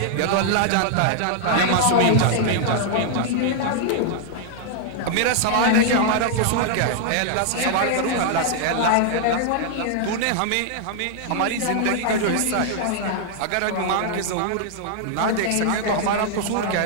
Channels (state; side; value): different; both; correlation 0.00